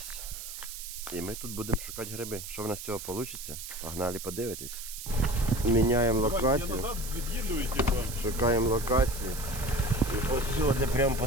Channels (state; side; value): noise; right; hiss, 9 dB below the sound